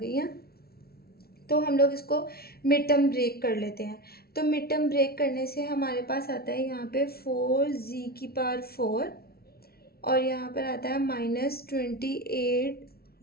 हैं। तो हम लोग इसको मिड टर्म ब्रेक कर लेते हैं। तो मिड टर्म ब्रेक करने से हमारे पास आता है यहाँ पे 4z⁴ और यहाँ पर आता है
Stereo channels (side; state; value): right; late; 0.44 ms